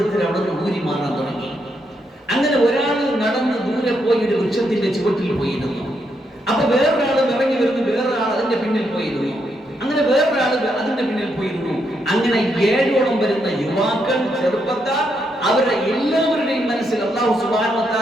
അവിടെ നിന്ന് ഊരി മാറാൻ തുടങ്ങി. അങ്ങനെ ഒരാൾ നടന്ന് ദൂരെ പോയി ഒരു വൃക്ഷത്തിന്റെ ചുവട്ടിൽ പോയിരുന്നു. അപ്പൊ വേറൊരാൾ ഇറങ്ങി വരുന്നു, വേറൊരാൾ അതിന്റെ പിന്നിൽ പോയിരുന്നു. അങ്ങനെ വേറൊരാൾ അതിന്റെ പിന്നിൽ പോയിരുന്നു. അങ്ങനെ 7ഓളം വരുന്ന യുവാക്കൾ, ചെറുപ്പക്കാർ, അവരുടെ എല്ലാവരുടെയും മനസ്സിൽ അല്ലാഹു സുബ്ഹാനഹു വ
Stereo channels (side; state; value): both; normal; correlation 0.79